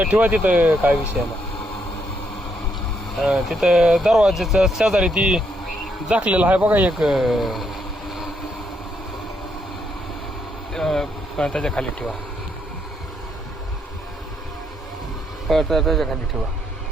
ठेवा तिथं, काय विषय नाही. तिथं दरवाजाच्या शेजारी ती झाकलेलं आहे बघा एक, त्याच्या खाली ठेवा. त्याच्या खाली ठेवा.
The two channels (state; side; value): normal; both; correlation 0.75